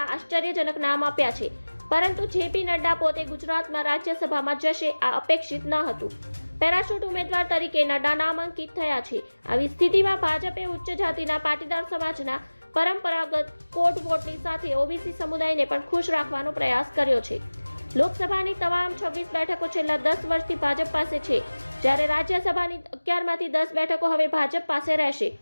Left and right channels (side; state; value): both; inverted; correlation -1.00